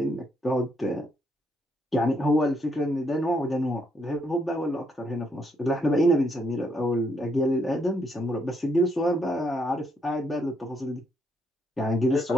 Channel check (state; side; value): normal; both; correlation 0.74